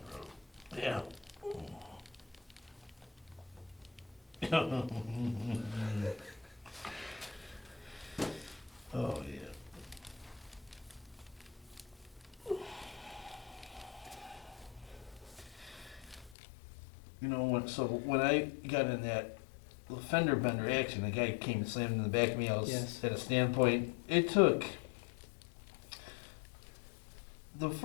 bro. Yeah. Oh yeah. You know when I got in that fender bender accident, the guy came and slammed in the back of me. I was Yes. at a standpoint. It took the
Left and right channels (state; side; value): drops out; right; at 16.4 s